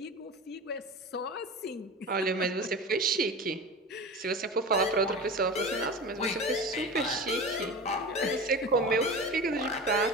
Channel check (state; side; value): normal; both; correlation 0.31